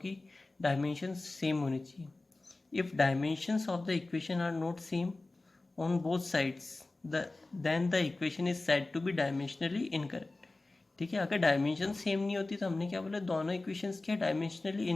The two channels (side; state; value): right; quieter; 3.1 dB